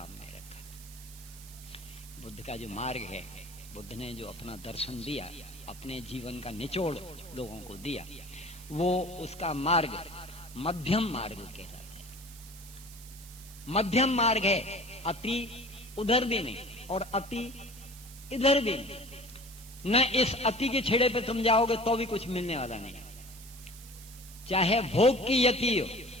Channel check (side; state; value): right; noise; hiss, 18 dB below the sound